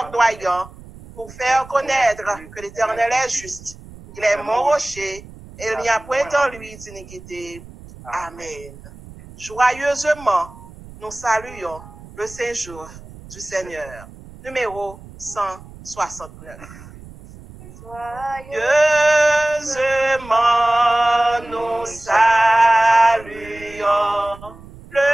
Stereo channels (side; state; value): right; noise; rumble, 18 dB below the sound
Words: pour faire connaître que l'Éternel est juste. Il est mon rocher et il n'y a point en lui d'iniquité. Amen. Joyeusement, nous saluons le séjour du Seigneur. Numéro 169. Joyeusement, nous saluons